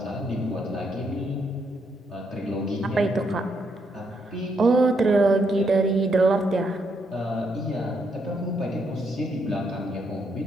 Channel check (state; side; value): normal; both; correlation 0.76